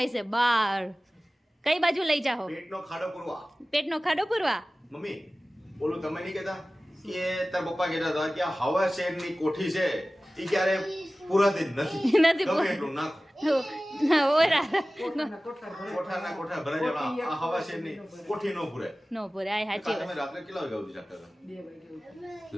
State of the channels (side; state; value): both; normal; correlation 0.97